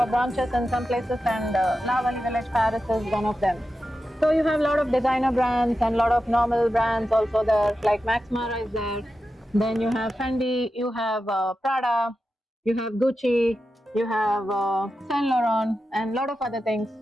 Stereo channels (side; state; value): both; normal; correlation 0.91